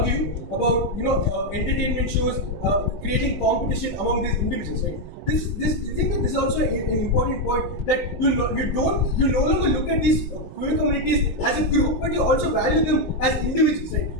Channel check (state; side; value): late; right; 19 ms